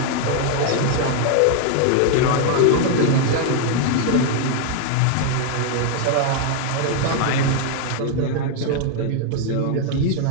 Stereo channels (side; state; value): both; different; correlation 0.00